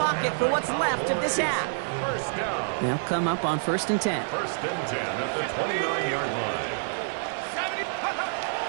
for what's left of this half. They'll come up on 1st and 10. 1st and 10 at the 29-yard line.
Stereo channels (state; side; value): silent; left; 59 dB below the other